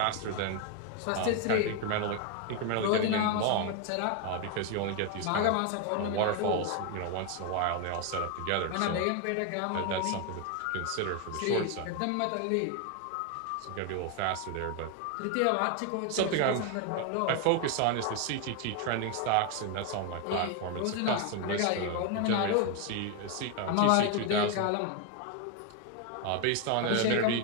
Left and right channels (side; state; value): both; different; correlation 0.01